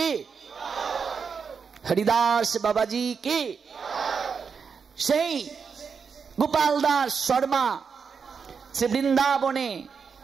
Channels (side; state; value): left; quieter; 5.9 dB